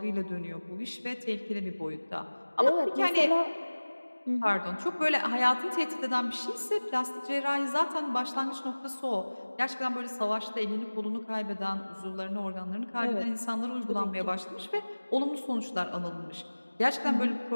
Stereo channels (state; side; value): inverted; both; correlation -1.00